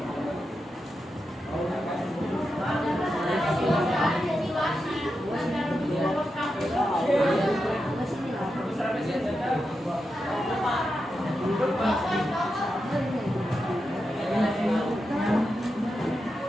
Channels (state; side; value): normal; both; correlation 0.88